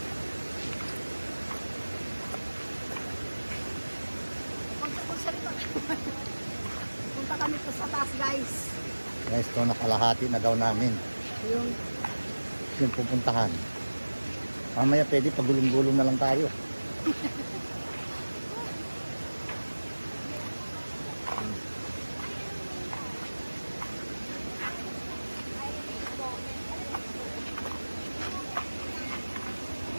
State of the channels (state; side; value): inverted; both; correlation -1.00